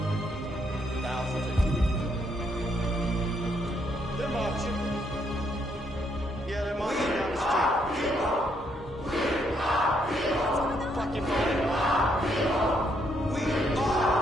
thousands. They're marching. Yeah, they're marching down the street. Fucking fine. We are.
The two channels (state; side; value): normal; both; correlation 0.73